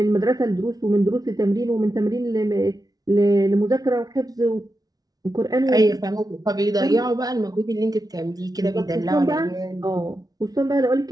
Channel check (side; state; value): left; late; 0.18 ms